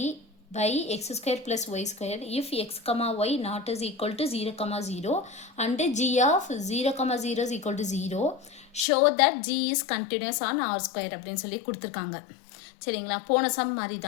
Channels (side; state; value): right; drops out; at 8.8 s